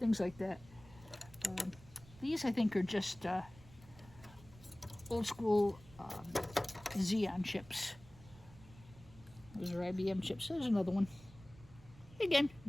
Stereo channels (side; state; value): right; noise; rumble, 21 dB below the sound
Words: like that. These, I think, are just old school Xeon chips. Those are IBM chips. There's another one. Again,